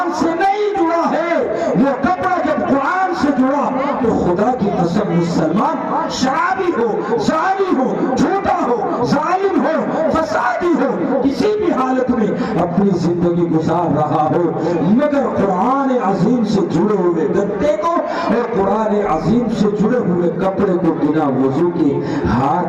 سے نہیں جڑا ہے۔ وہ کپڑا جب قرآن سے جڑا تو خدا کی قسم مسلمان شرابی ہو، زانی ہو، جھوٹا ہو، ظالم ہو، فسادی ہو، کسی بھی حالت میں اپنی زندگی گزار رہا ہو، مگر قرآن عظیم سے جڑے ہوئے گتے کو اور قرآن عظیم سے جڑے ہوئے کپڑے کو بنا وضو کے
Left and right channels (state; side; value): identical; both; correlation 1.00